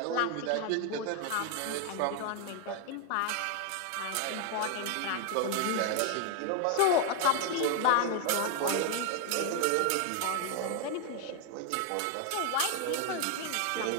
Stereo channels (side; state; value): both; different; correlation 0.01